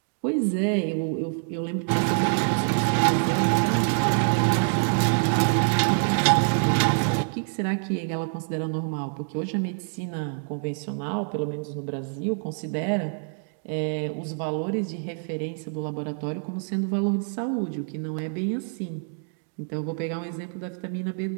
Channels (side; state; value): left; silent; 61 dB below the other